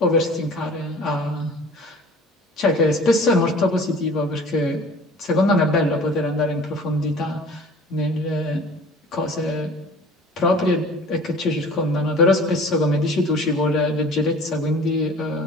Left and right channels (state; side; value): normal; both; correlation 0.45